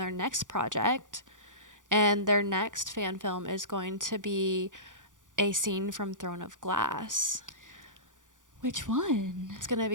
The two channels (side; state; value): left; late; 0.87 ms